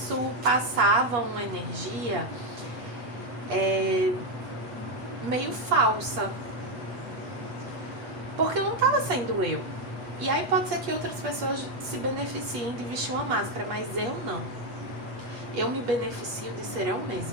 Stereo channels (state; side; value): late; left; 8.3 ms